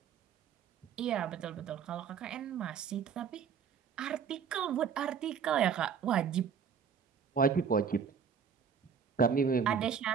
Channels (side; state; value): left; quieter; 6.9 dB